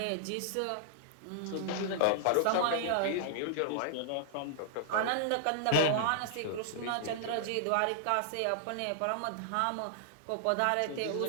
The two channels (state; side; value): different; both; correlation -0.01